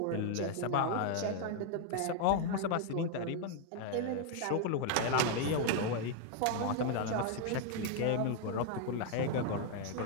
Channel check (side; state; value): both; different; correlation 0.00